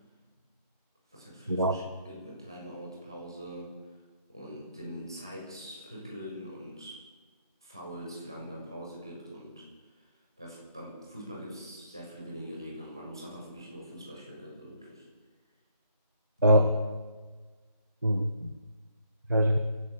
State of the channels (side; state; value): both; inverted; correlation -0.70